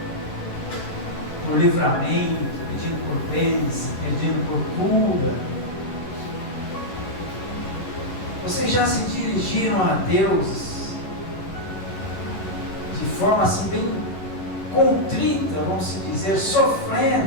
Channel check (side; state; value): right; late; 11 ms